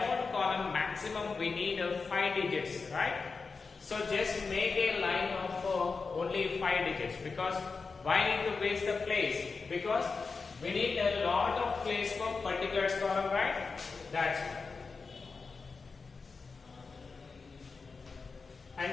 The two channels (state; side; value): quieter; right; 4.6 dB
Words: column maximum we need 5 digits, right? So just make a line of only 5 digits, because why need to waste the place? Because we need a lot of place for particulars column, right? That's it. And